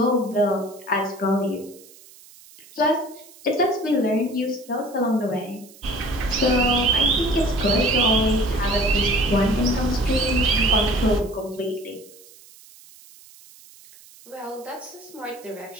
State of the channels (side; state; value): right; noise; hiss, 23 dB below the sound